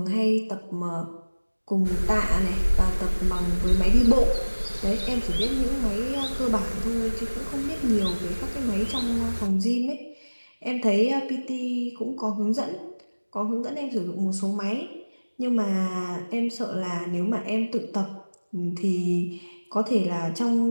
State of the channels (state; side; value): inverted; both; correlation -1.00